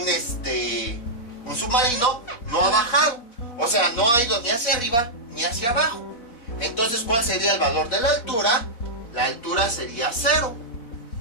submarino, no ha bajado. O sea, no ha ido ni hacia arriba ni hacia abajo. Entonces, ¿cuál sería el valor de la altura? La altura sería 0.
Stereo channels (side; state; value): right; late; 4.1 ms